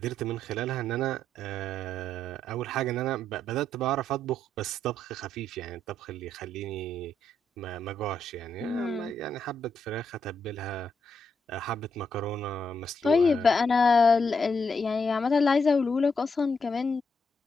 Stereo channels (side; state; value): both; normal; correlation 0.78